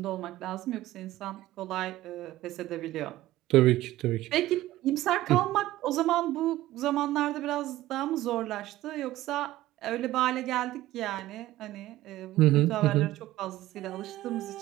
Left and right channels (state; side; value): quieter; left; 16.0 dB